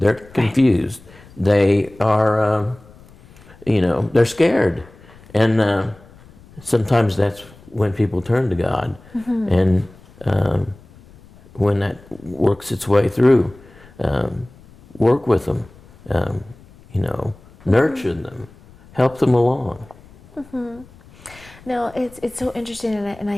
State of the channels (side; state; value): left; noise; rumble, 24 dB below the sound